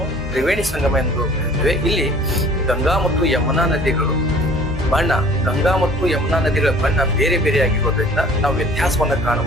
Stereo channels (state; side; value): normal; both; correlation 0.50